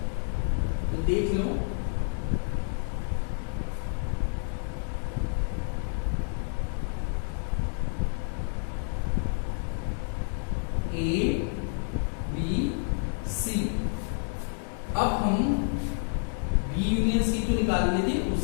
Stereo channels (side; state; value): right; silent; 57 dB below the other